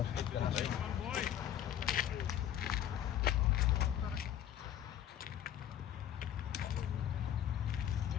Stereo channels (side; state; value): right; quieter; 10.6 dB